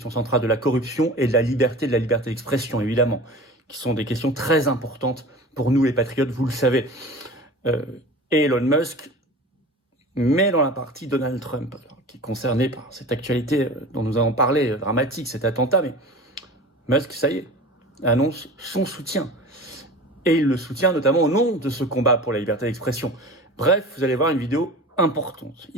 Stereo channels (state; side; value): normal; both; correlation 0.36